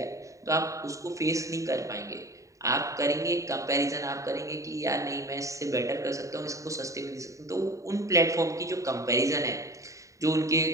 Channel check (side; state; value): left; late; 0.16 ms